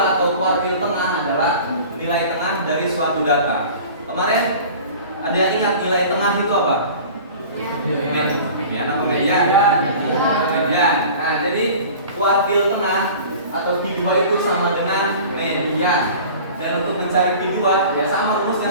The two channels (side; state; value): both; inverted; correlation -0.41